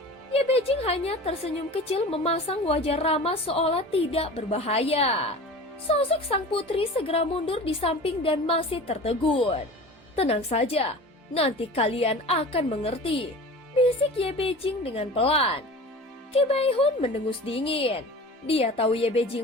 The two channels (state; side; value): normal; both; correlation 0.37